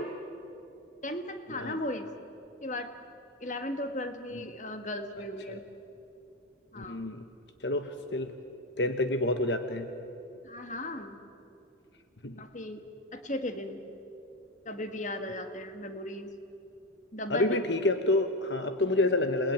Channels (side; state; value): both; normal; correlation 0.14